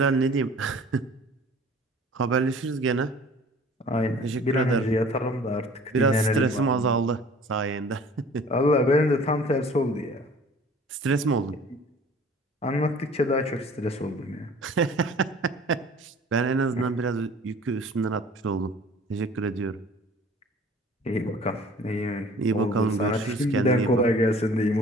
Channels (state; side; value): normal; both; correlation 0.49